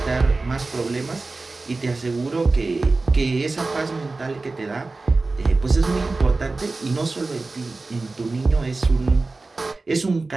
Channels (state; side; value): quieter; left; 3.5 dB